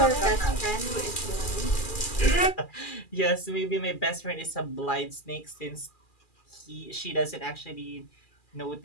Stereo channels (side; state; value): right; late; 2.4 ms